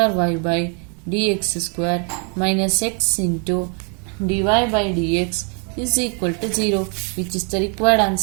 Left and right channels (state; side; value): quieter; left; 38.9 dB